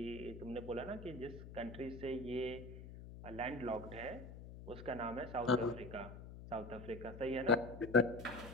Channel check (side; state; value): left; noise; hum, 12 dB below the sound